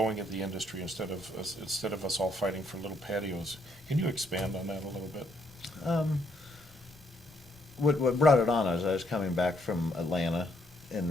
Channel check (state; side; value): normal; both; correlation 0.72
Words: of the industry instead of us all fighting for little patios. Can you expand on that a little bit? What brought it on is I was coming back from Atlanta,